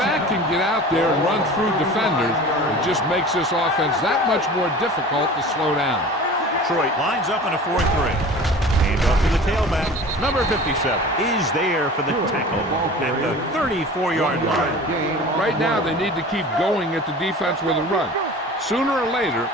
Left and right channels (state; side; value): normal; both; correlation 0.40